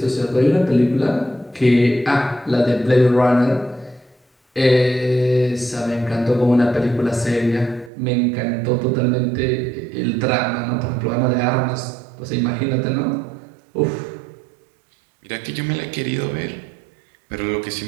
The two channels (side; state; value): left; drops out; at 7.9 s